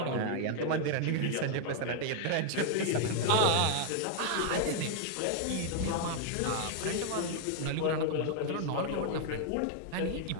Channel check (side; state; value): both; different; correlation 0.00